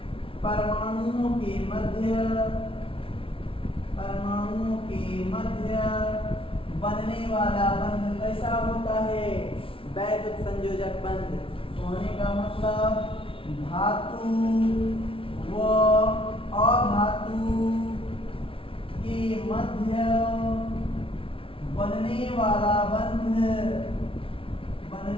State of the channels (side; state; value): right; late; 0.26 ms